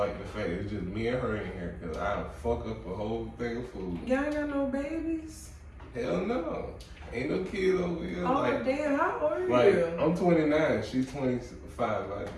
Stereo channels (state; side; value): identical; both; correlation 1.00